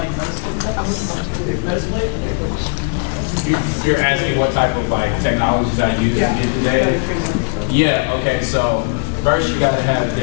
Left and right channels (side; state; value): right; quieter; 39.5 dB